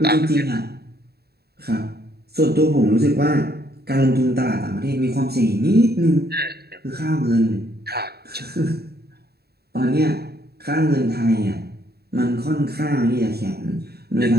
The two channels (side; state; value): left; late; 0.46 ms